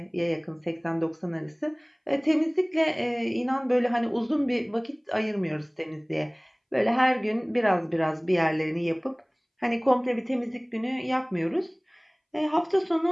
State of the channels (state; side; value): identical; both; correlation 1.00